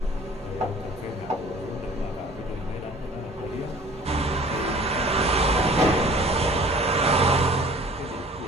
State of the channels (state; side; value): normal; both; correlation 0.49